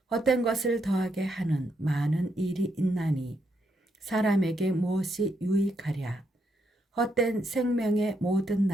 헛된 것을 더하게 하는 많은 일이 있나니 사람에게 무엇이 유익하랴. 헛된 생명의 모든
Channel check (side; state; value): both; normal; correlation 0.78